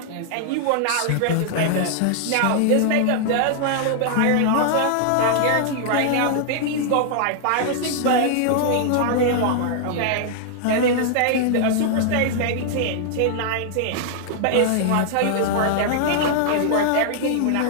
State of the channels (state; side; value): different; both; correlation -0.01